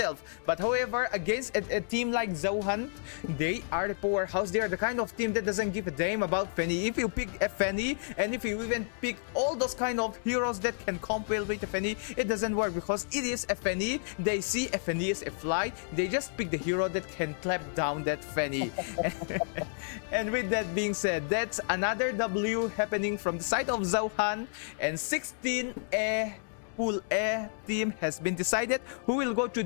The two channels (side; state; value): right; silent; 57 dB below the other